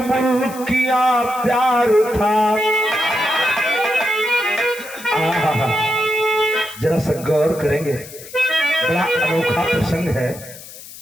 किया प्यार था। जरा सा गौर करेंगे, बड़ा अनोखा प्रसंग है।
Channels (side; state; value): left; noise; hiss, 16 dB below the sound